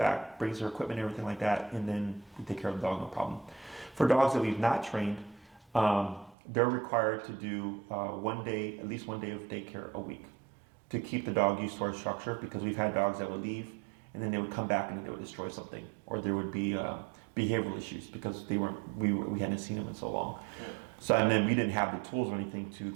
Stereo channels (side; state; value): left; drops out; at 6.4 s